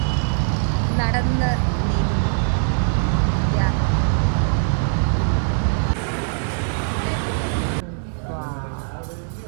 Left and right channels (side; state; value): left; silent; 65 dB below the other